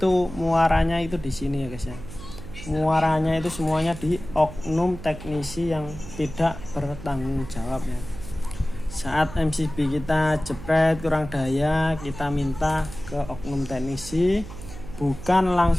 muaranya itu di sini ya guys ya. Muaranya itu semuanya di oknum teknisi yang tidak bertanggung jawab ya. Saat MCB kita jepret kurang daya, kita minta ke oknum teknisi, bukan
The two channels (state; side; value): noise; right; hum, 13 dB below the sound